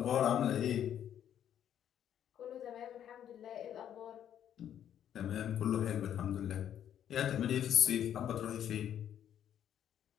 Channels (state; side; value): quieter; right; 10.0 dB